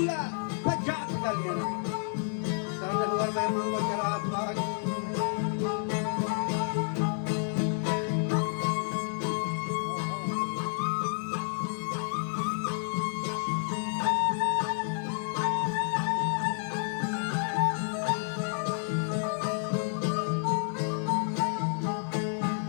pa jaat galena. Tara ne huar mein mango jarat bagi.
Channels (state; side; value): silent; right; 58 dB below the other